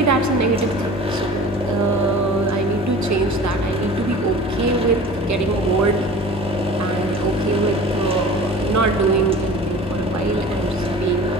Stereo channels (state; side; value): normal; both; correlation 0.41